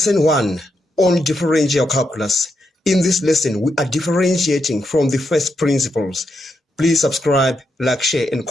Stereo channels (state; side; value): normal; both; correlation 0.82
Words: 1 on differential calculus. In this lesson, we are differentiating from the first principles. Please subscribe, like, share, and